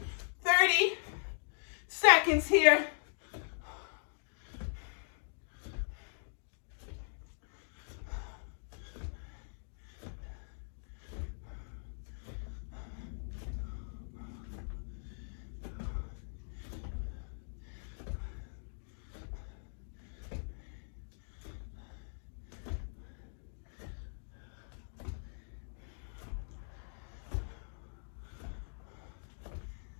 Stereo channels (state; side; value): silent; right; digital silence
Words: 30 seconds here.